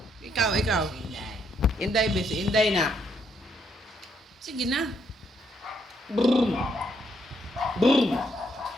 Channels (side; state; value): both; normal; correlation 0.74